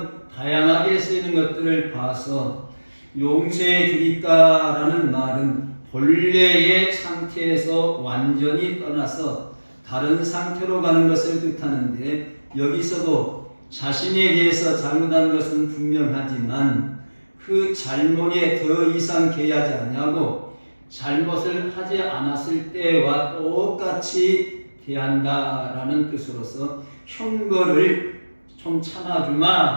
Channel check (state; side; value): inverted; both; correlation -1.00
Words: 다양하게 쓰이는 것들을 봐서 용서해 주리까 라는 말은 본래의 상태에서 완전히 떠나서 다른 상태로 가는 것을 뜻하는데 여기서도 자신에 대해서 잘못한 것은 분명하지만 그 잘못에 더 이상 개의하지 아니하고 잘못을 하지 않았을 때와 똑같이 대한다라는 뜻으로서 형벌을 좀